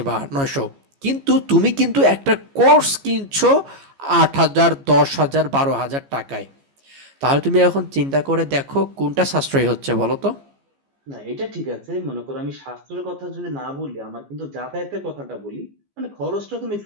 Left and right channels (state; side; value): late; left; 15 ms